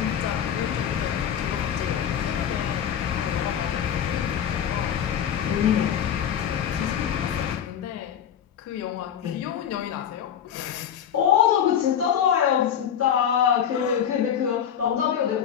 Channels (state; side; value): quieter; right; 8.9 dB